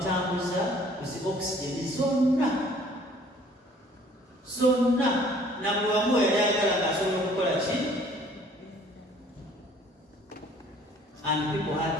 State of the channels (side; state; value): both; normal; correlation 0.55